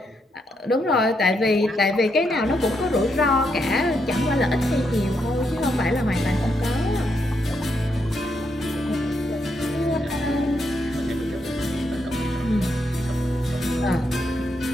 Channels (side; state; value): both; normal; correlation 0.79